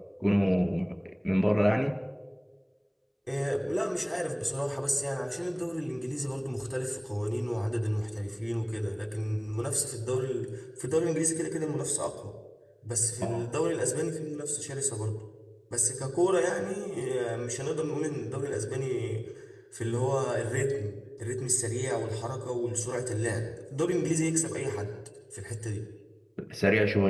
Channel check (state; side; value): identical; both; correlation 1.00